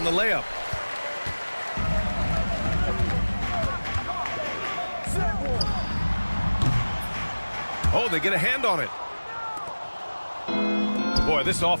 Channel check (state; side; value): inverted; both; correlation -1.00